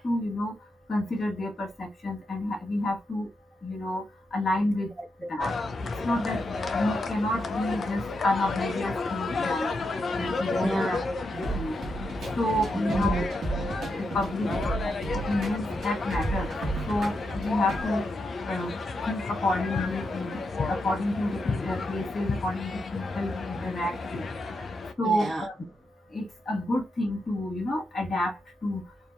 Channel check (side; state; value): both; normal; correlation 0.84